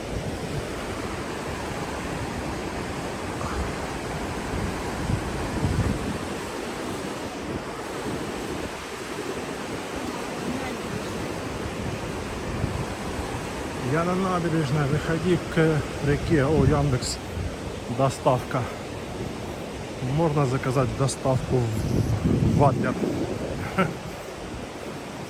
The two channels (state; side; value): identical; both; correlation 1.00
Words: Я на набережной, выходи к реке. О, Яндекс. Доставка. Можно заказать доставку в Адлер.